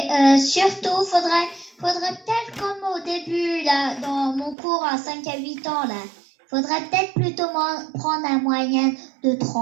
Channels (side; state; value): left; drops out; at 4.5 s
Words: surtout, faudrait peut-être comme au début, là, dans mon cours à 5 à 8 ans, là, faudrait peut-être plutôt prendre un moyen de